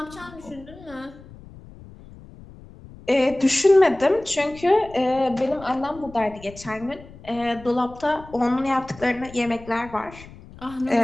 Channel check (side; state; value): left; noise; rumble, 19 dB below the sound